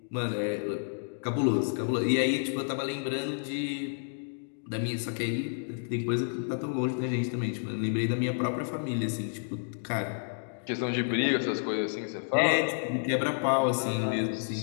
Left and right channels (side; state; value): right; silent; digital silence